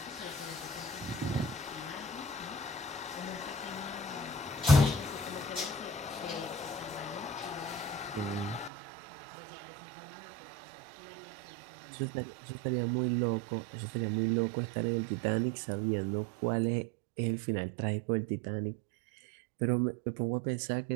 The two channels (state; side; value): drops out; left; at 8.7 s